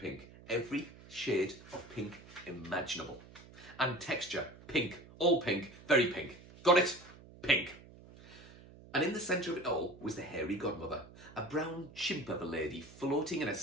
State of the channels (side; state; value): right; noise; hum, 20 dB below the sound